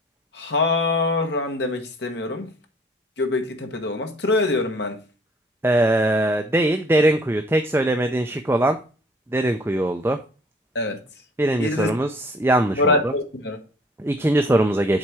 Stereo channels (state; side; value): normal; both; correlation 0.55